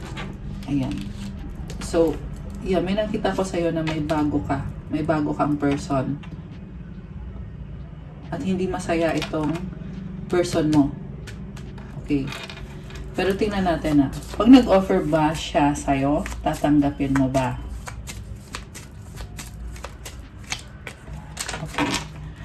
Ayan. So, yeah, may nakita ko sa'yo na may bago ka. May bago kang person. At hindi masaya itong person mo. Okay. Pero tingnan natin pag nag-offer ba siya sa'yo, tatanggapin mo ba? Okay.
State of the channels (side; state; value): both; identical; correlation 1.00